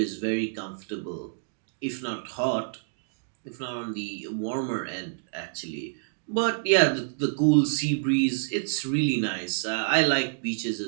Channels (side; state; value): left; silent; digital silence